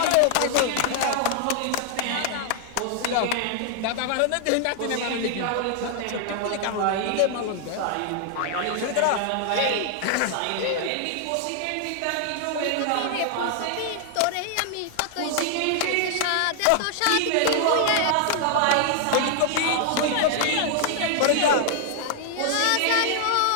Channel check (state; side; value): different; both; correlation 0.00